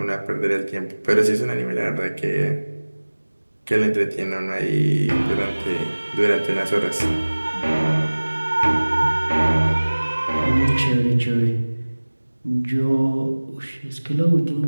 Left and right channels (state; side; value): inverted; both; correlation -1.00